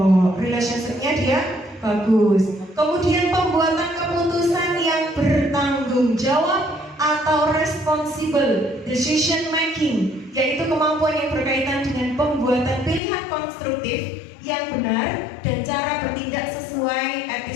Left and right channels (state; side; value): drops out; right; at 13.0 s